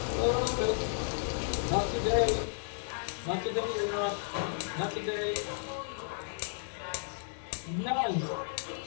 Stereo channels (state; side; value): silent; right; digital silence